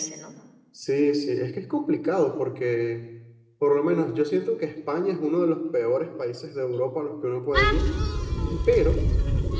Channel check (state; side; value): identical; both; correlation 1.00